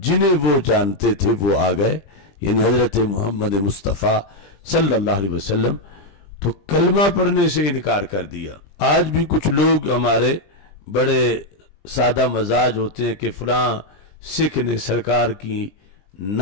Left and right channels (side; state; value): right; late; 20 ms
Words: جنہیں وہ جانتے تھے وہ آ گئے، یعنی حضرت محمد مصطفیٰ صلی اللہ علیہ وسلم، تو کلمہ پڑھنے سے انکار کر دیا۔ آج بھی کچھ لوگ ہمارے بڑے سادہ مزاج ہوتے ہیں کہ فلاں سکھ نے سرکار کی